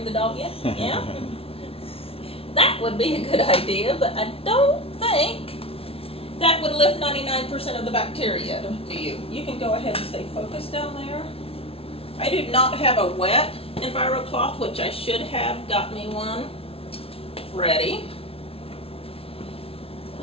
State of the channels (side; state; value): right; late; 0.27 ms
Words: the dog in? Yeah. That would be a good idea, but I don't think that would lift 99% of the bacteria, do you? You can go ahead and stay focused down there. I do not have a wet EnviroCloth, which I should have got me one ready.